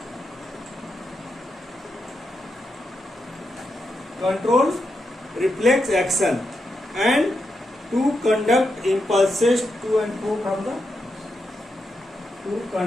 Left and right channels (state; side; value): normal; both; correlation 0.84